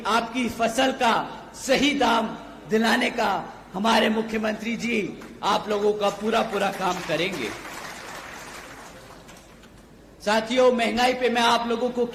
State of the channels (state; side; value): identical; both; correlation 1.00